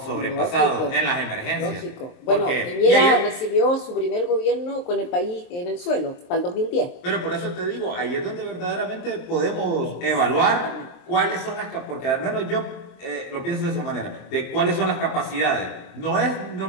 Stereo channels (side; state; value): right; late; 23 ms